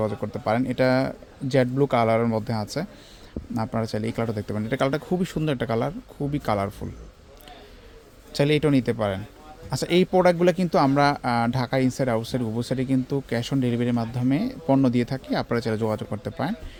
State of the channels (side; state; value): both; identical; correlation 1.00